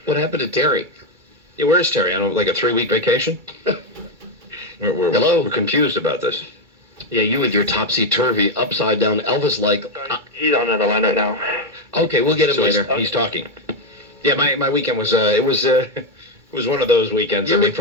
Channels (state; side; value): late; left; 2.2 ms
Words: What happened to Terry? Yeah, where's Terry? On like a 3-week vacation? Hello? We're confused about this. Yeah, you with your topsy-turvy, upside-down Elvis-like... He's on another line right now. Okay, we'll get him So later. he's talking. Yeah, my weekend was it was one of those weekends. I mean,